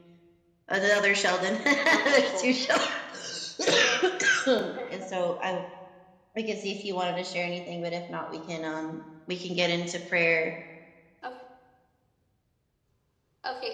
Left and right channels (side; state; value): both; identical; correlation 1.00